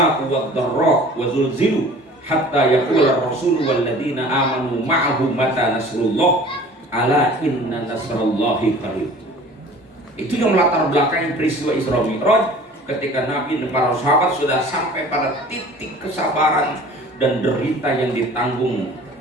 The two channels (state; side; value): normal; both; correlation 0.46